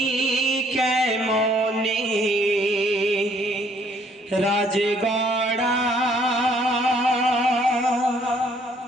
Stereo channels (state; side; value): normal; both; correlation 0.63